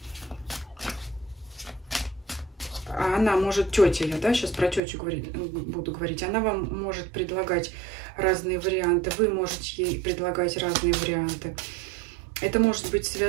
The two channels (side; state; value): left; drops out; at 4.8 s